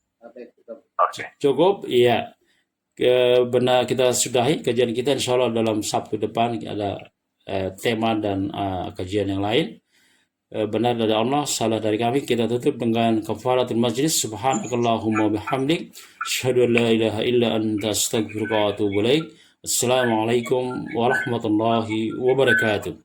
Cukup, iya. Benar, kita sudahi kajian kita, insya Allah dalam Sabtu depan ada tema dan kajian yang lain. Benar dari Allah, salah dari kami. Kita tutup dengan kafaratul majlis. Subhanakallahumma bihamdik, asyhadu an la ilaha illa anta, astaghfiruka wa atubu ilaik. Assalamualaikum warahmatullahi wabarakatuh.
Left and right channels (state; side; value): identical; both; correlation 1.00